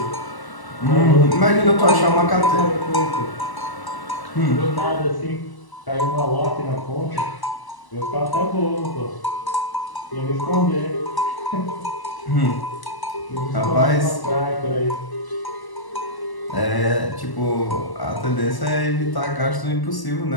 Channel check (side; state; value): right; late; 1.1 ms